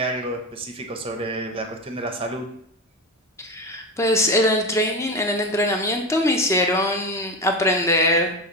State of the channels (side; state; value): both; normal; correlation 0.20